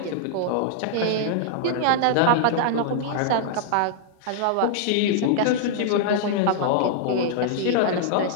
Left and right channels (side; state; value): both; different; correlation -0.01